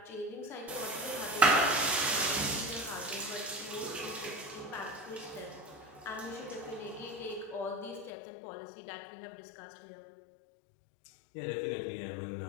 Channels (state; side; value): drops out; right; at 8.1 s